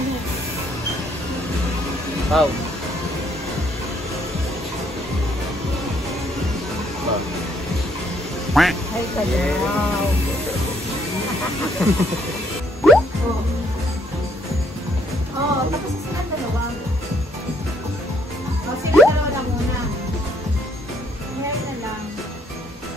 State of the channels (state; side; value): normal; both; correlation 0.68